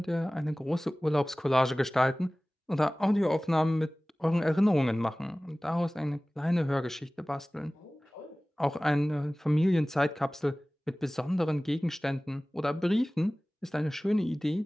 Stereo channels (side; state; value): both; normal; correlation 0.98